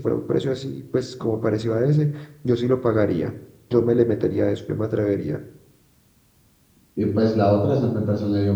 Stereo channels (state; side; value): identical; both; correlation 1.00